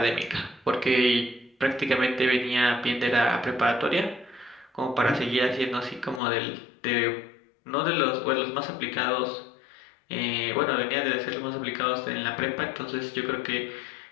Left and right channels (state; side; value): drops out; right; at 6.2 s